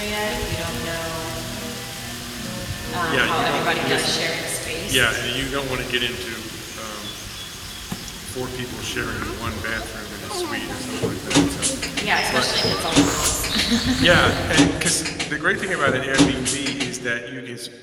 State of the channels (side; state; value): both; identical; correlation 1.00